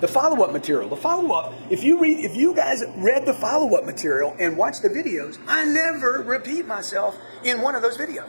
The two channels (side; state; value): both; inverted; correlation -1.00